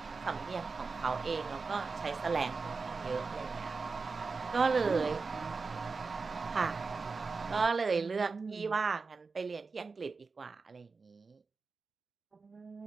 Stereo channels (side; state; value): left; quieter; 4.4 dB